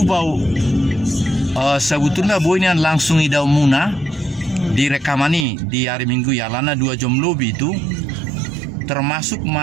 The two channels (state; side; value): drops out; left; at 5.5 s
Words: sebetulnya boynya langsung idau muna direkamani di hari Minggu ya lana 2 jam lebih itu termasuk